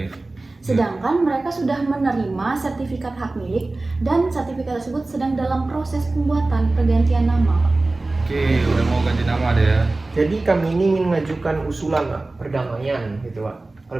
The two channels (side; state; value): left; quieter; 3.1 dB